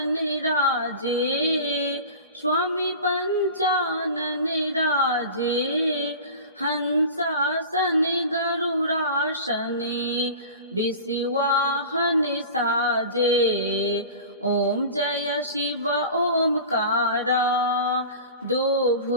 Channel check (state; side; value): inverted; both; correlation -0.36